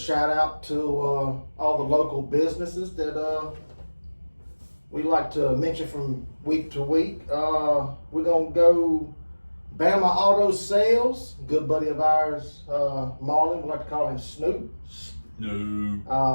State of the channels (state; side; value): inverted; both; correlation -1.00